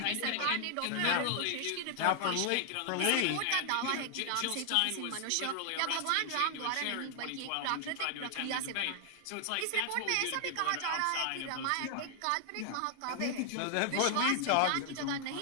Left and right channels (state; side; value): different; both; correlation 0.00